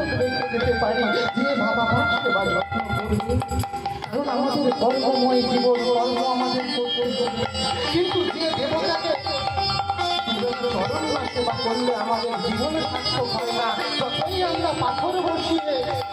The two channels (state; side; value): identical; both; correlation 1.00